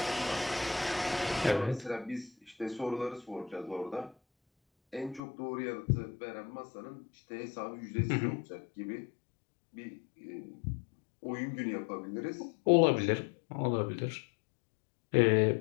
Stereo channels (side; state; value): right; drops out; at 5.2 s